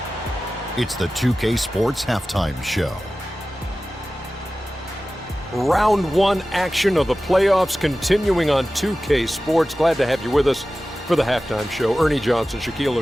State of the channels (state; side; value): normal; both; correlation 0.95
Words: It's the 2K Sports Halftime Show. Round 1 action of the playoffs continuing on 2K Sports. Glad to have you with us for the halftime show. Ernie Johnson, Shaquille